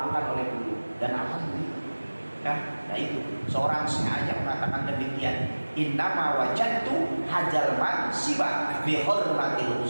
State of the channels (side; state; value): both; inverted; correlation -1.00